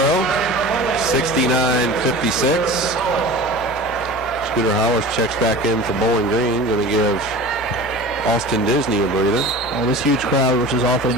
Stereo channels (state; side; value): normal; both; correlation 0.36